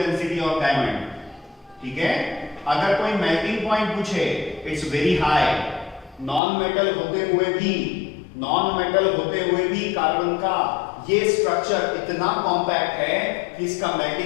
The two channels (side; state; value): right; drops out; at 6.4 s